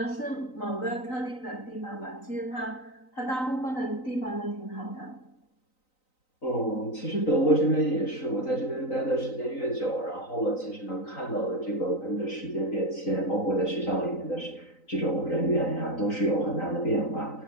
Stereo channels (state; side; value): late; right; 3.9 ms